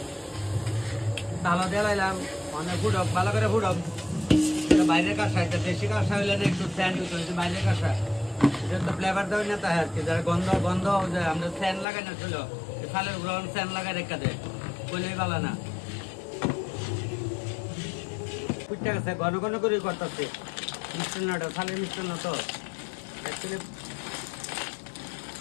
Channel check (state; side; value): drops out; right; at 11.9 s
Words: তালা দিয়ে লাইলাম, অনেক ফুটক, ভালো করে ফুটক। বাইরের কাঁসা, এটা দেশি কাঁসা হইলে না একটু স্যান্ড হইতে হয়েছে, বাইরের কাঁসা এটা তো ফ্লেভার দেওয়া না, তাই আর কি। যারা গন্ধ যে আমরা স্যান্ড লাগাই না ছিল, খালের গ্রহণ স্যান্ড লাগাই রেখা দেয়, কইলেই ভালো না। ফুটতে গেছে, ঘন করে করতেছে মিষ্টান্নটা, খালের মিষ্টান্ন তো অ্যাকচুয়ালি।